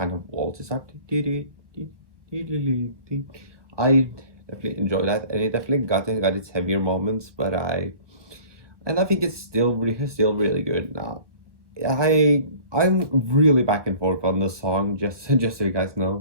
of waltz. It's like I definitely enjoy that, and it definitely got its heavier moments, but I think it's still really good now. I'm really back and forth on the song, just so you guys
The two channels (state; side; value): late; left; 1.0 ms